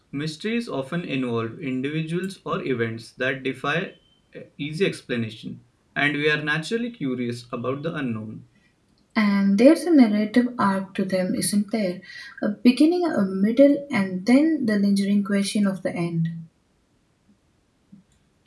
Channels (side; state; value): both; identical; correlation 1.00